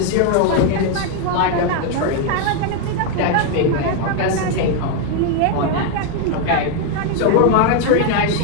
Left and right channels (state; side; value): different; both; correlation 0.01